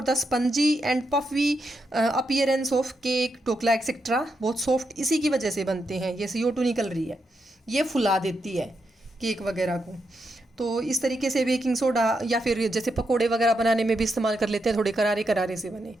the spongy and puffy appearance of cake, dhokla etcetera. बहुत सॉफ्ट इसी की वजह से बनते हैं। ये CO2 निकल रही है, ये फुला देती है केक वगैरह को। तो इस तरीके से बेकिंग सोडा, या फिर जैसे पकोड़े वगैरह बनाने में भी इस्तेमाल कर लेते हैं, थोड़े करारे करारे से बने,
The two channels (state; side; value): normal; both; correlation 0.83